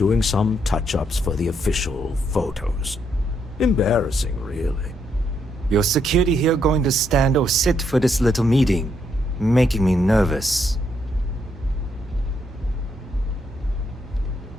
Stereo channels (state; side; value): normal; both; correlation 0.76